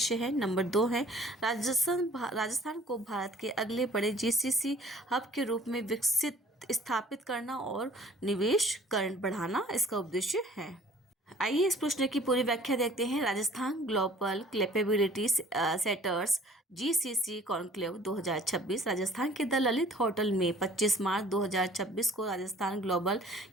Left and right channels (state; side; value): normal; both; correlation 0.52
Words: है, नंबर 2 है राजस्थान को भारत के अगले बड़े जीसीसी हब के रूप में विकसित स्थापित करना और निवेश बढ़ाना इसका उद्देश्य है। आइए इस प्रश्न की पूरी व्याख्या देखते हैं। Rajasthan global capability centres GCC conclave 2026 Rajasthan के द ललित होटल में 25 मार्च 2026 को Rajasthan global